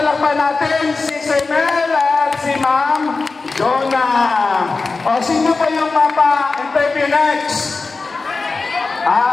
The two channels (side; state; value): right; quieter; 4.0 dB